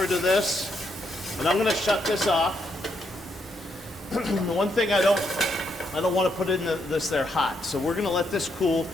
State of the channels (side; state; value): both; normal; correlation 0.77